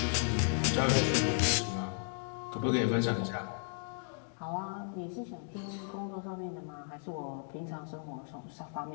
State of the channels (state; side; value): silent; right; 55 dB below the other